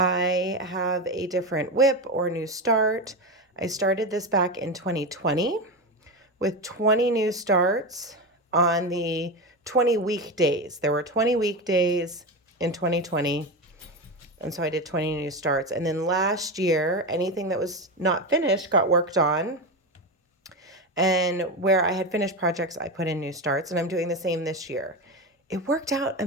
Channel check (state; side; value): normal; both; correlation 0.18